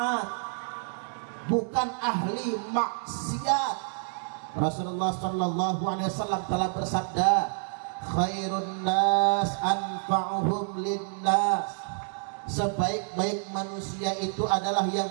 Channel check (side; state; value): left; silent; 59 dB below the other